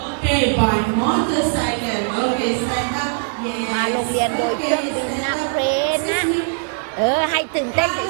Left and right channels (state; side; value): silent; left; digital silence